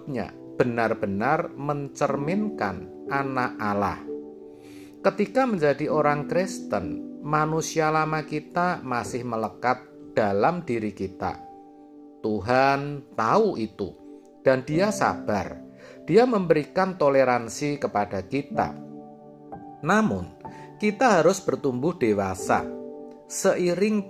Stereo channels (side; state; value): both; identical; correlation 1.00